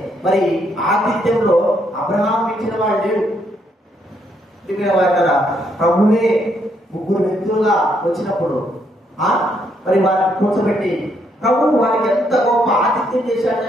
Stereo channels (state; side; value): normal; both; correlation 0.73